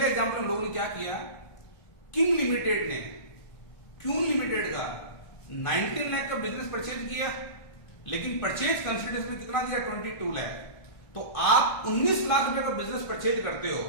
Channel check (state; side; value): late; right; 1.6 ms